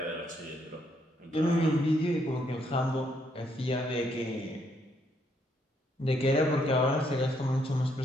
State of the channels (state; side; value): normal; both; correlation 0.73